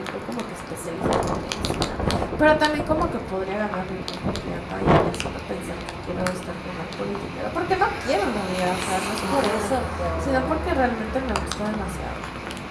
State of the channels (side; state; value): both; identical; correlation 1.00